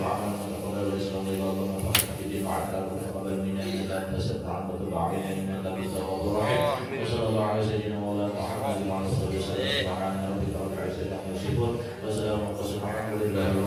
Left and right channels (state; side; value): identical; both; correlation 1.00